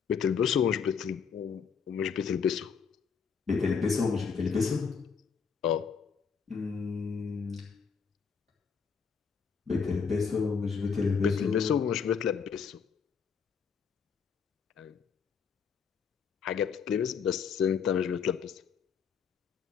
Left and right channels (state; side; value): quieter; right; 6.2 dB